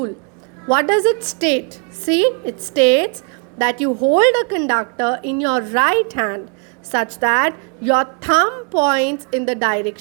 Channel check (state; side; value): quieter; left; 38.8 dB